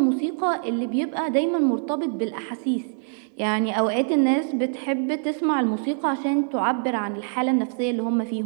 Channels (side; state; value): left; silent; digital silence